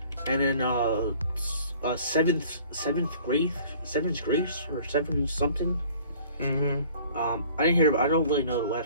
And then Seventh Grace or Seven something. Mm-hmm. I didn't hear. I don't really know the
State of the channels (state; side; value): inverted; both; correlation -0.50